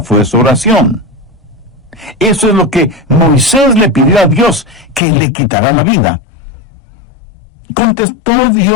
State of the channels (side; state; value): right; drops out; at 5.0 s